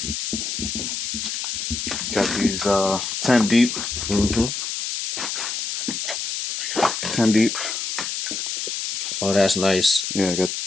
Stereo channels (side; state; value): left; noise; hiss, 3 dB below the sound